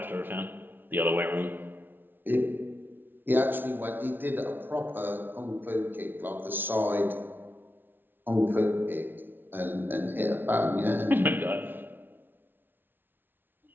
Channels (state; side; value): late; left; 0.098 ms